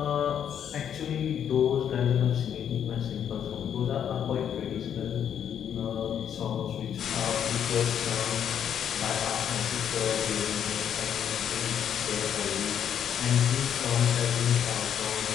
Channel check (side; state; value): right; quieter; 8.9 dB